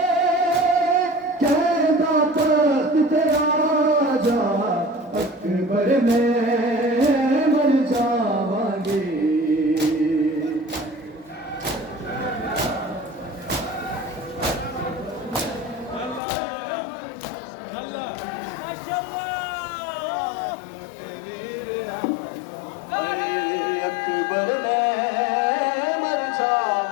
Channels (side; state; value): right; drops out; at 16.2 s